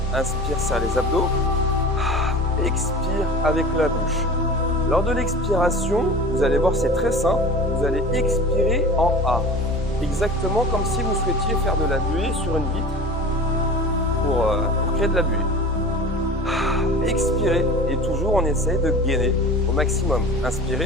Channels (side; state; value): both; normal; correlation 0.38